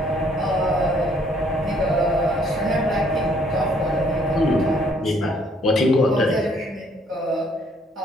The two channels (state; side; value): normal; both; correlation 0.64